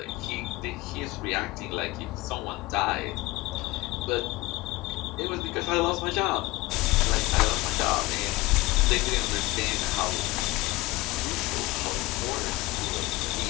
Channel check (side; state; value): right; quieter; 21.0 dB